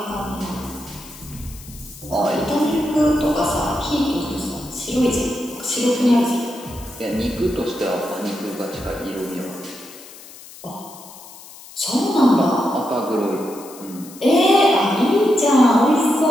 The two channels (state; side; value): noise; left; hiss, 18 dB below the sound